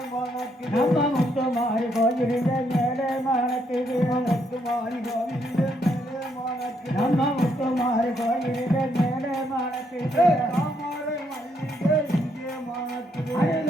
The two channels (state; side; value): normal; both; correlation 0.74